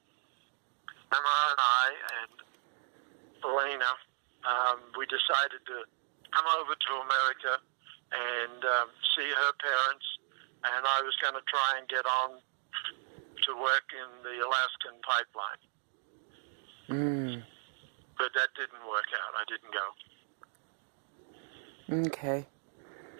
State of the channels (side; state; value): left; silent; digital silence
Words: Emma and I and Elena, we decided to come over to America and see her parents. And I was going to try and get on to work in the Alaskan pipeline. But that didn't work out. I didn't go. Okay.